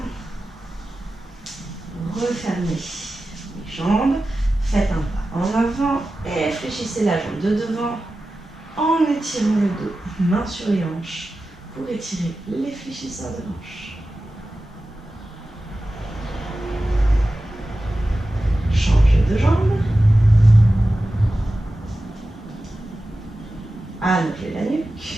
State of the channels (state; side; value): normal; both; correlation 0.94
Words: Refermez les jambes. Faites un pas en avant et fléchissez la jambe de devant en étirant le dos, main sur les hanches, pour étirer les fléchisseurs de hanches. Change de jambe. Allongez la